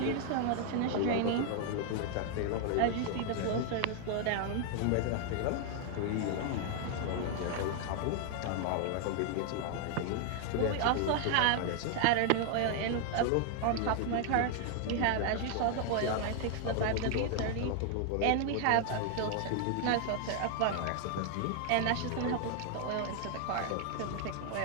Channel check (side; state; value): both; different; correlation 0.00